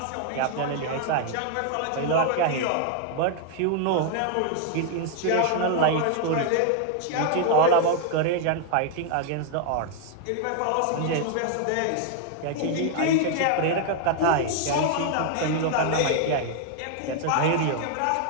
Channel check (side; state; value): both; different; correlation 0.00